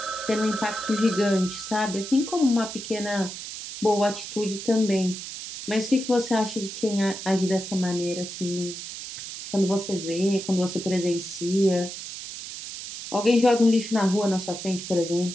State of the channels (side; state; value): right; noise; hiss, 9 dB below the sound